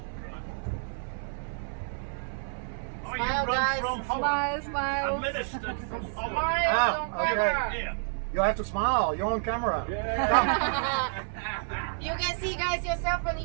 Oh, you Smile, run guys. from Holland. Smile, smile. Administered from Holland. Smile on okay. camera. Yeah. You have to smile, you're on camera. You can see guys yourself on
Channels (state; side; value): silent; left; 58 dB below the other